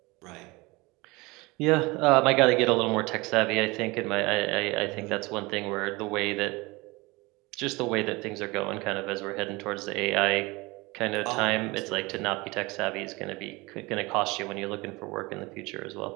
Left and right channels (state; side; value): quieter; left; 23.5 dB